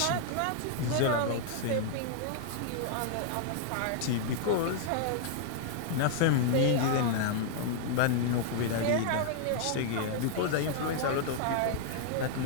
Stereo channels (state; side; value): different; both; correlation -0.01